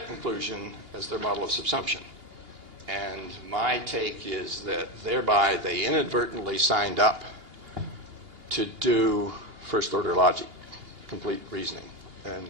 inclusion as their model of subsumption. And my take is that thereby they inadvertently signed up to do first-order logic, complete reasoning. And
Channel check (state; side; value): late; left; 2.8 ms